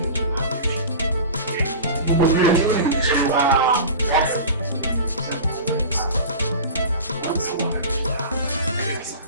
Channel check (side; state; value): both; inverted; correlation -0.34